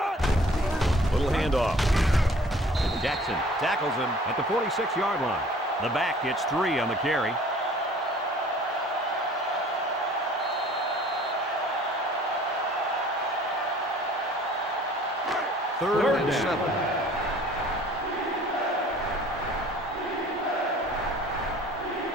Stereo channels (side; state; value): both; normal; correlation 0.51